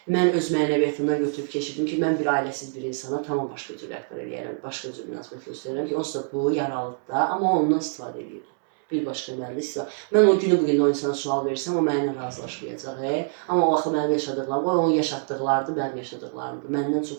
Mən öz mənəviyyatımdan götürüb keçirdim ki, mən bir ailəsiz bir insana tamam başqa cür rəhbər eləyərəm, başqa cür münasibət göstərirəm ki, onsuz da bu yaralıdır da, amma ondan istifadə edir. Bir başqa mənimlə istifadə. Mən o günü bugün o insana sual versəm, o mənimlə razılaşmayacaq. Amma o vaxt mənim yaşadıqlarım, o onun yaşatdıqlarıdır, mənim yaşadıqlarımdır. Məndən çox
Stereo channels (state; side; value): silent; left; 62 dB below the other